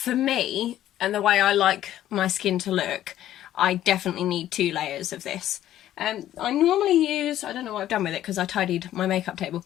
me, and the way I like my skin to look, I definitely need 2 layers of this. I normally use, I don't know what I've done with it because I tidied my makeup table,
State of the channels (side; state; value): right; quieter; 12.6 dB